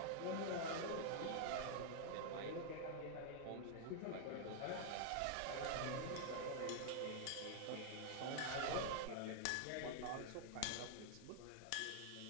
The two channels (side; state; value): both; different; correlation -0.01